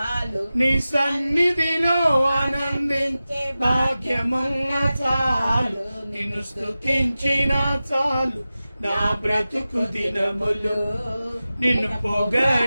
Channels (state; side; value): inverted; both; correlation -0.95